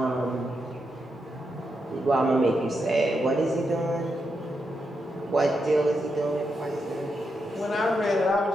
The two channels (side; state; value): both; normal; correlation 0.84